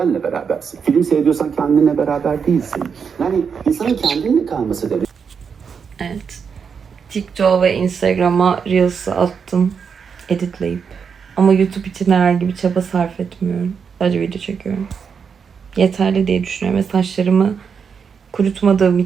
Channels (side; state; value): left; quieter; 6.4 dB